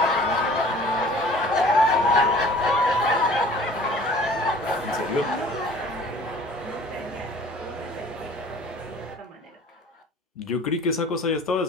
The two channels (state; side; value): normal; both; correlation 0.48